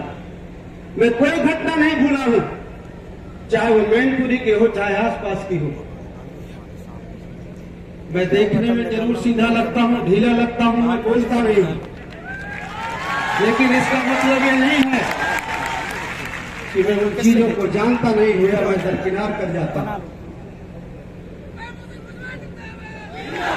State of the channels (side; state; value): both; identical; correlation 1.00